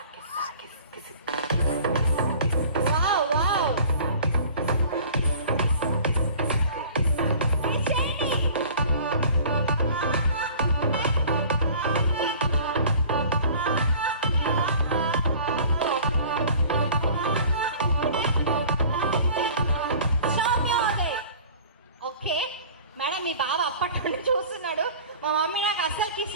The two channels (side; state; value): both; inverted; correlation -0.46